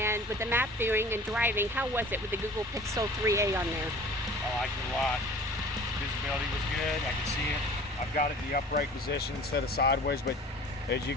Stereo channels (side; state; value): both; normal; correlation 0.44